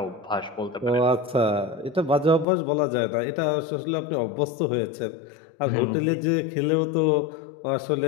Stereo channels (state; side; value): drops out; right; at 2.5 s